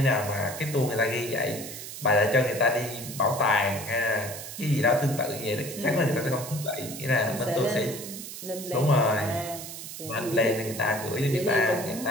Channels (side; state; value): right; noise; hiss, 10 dB below the sound